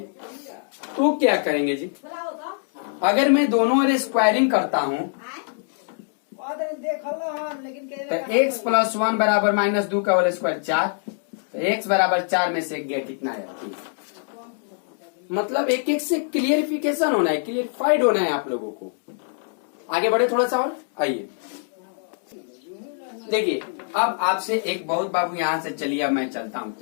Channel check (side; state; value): right; silent; digital silence